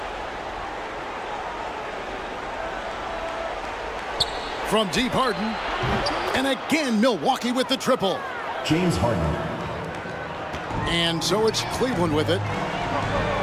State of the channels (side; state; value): both; identical; correlation 1.00